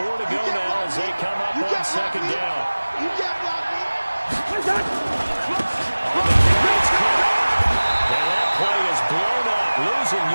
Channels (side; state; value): both; inverted; correlation -1.00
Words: to go now as they come up on second down. You got block me. On the carry, it's caught. And that play is blown up, losing